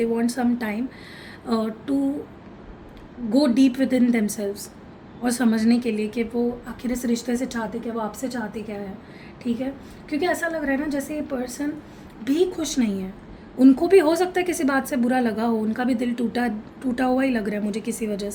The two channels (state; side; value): identical; both; correlation 1.00